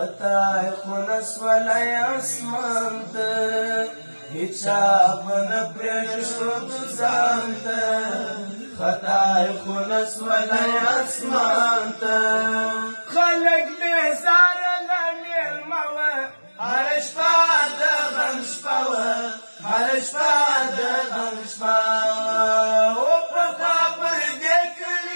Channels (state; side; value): inverted; both; correlation -1.00